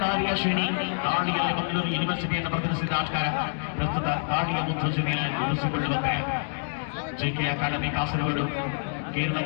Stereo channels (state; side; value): silent; right; digital silence